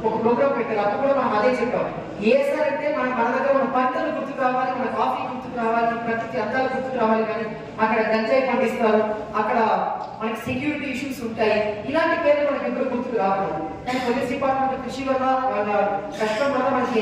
ఒక ప్రోగ్రామ్ పెట్టారు, అప్పుడు కూడా మనం అదే చెప్పాం. ఏసార్ అంటే మన దగ్గర మన పంటలు గుర్తుకు రావాలి, మన కాఫీ గుర్తుకు రావాలి, ప్రకృతి అందాలు గుర్తుకు రావాలి. కానీ అక్కడ గంజాయి పండిస్తారు, అక్కడ మనకి సెక్యూరిటీ ఇష్యూస్ ఉంటాయి. ఇలాంటి పేర్లు మనకి ఎప్పుడు గుర్తుకు రావాలి. కానీ పోలీస్ డిపార్ట్మెంట్ కృషి వల్ల వాళ్ళ కష్టం వల్ల మనకి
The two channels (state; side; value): identical; both; correlation 1.00